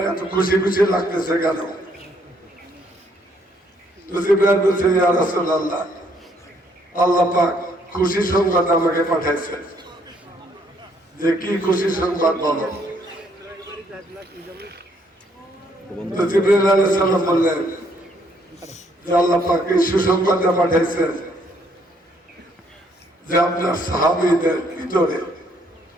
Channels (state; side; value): normal; both; correlation 0.68